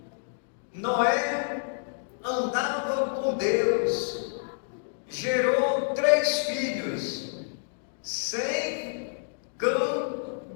Noé andava com Deus, gerou 3 filhos, Sem, Cã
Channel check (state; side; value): silent; right; digital silence